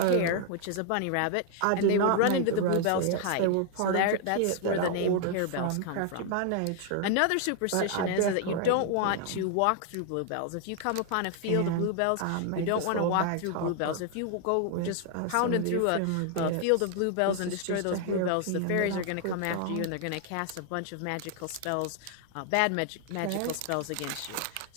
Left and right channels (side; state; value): both; different; correlation 0.00